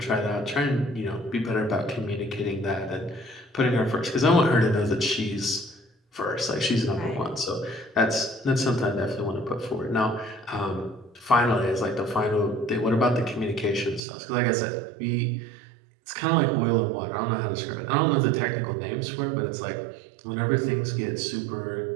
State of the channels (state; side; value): drops out; left; at 14.0 s